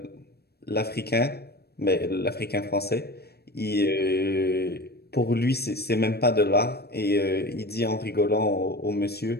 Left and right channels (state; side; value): late; right; 0.47 ms